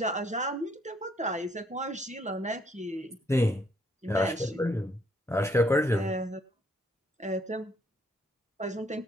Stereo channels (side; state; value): both; normal; correlation 0.68